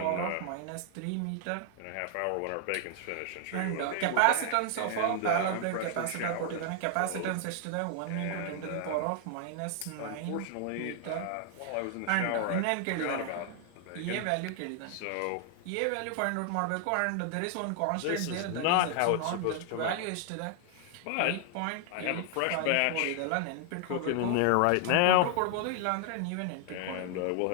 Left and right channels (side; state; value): both; different; correlation 0.00